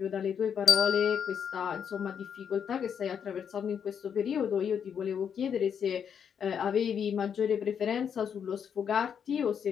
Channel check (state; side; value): quieter; right; 7.7 dB